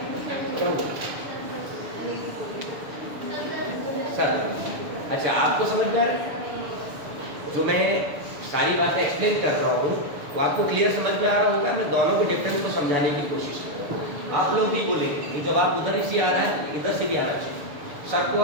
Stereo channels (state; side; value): late; left; 6.9 ms